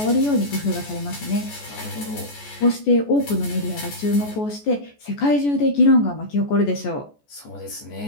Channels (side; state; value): right; late; 14 ms